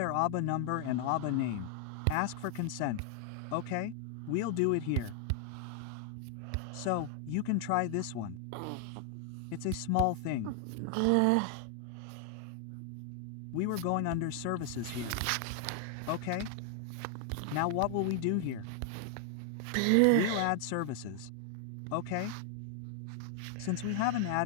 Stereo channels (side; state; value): both; different; correlation 0.00